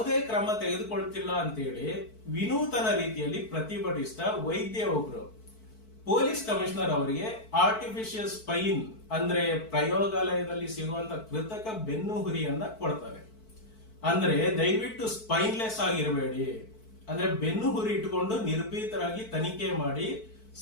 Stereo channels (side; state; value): right; late; 4.5 ms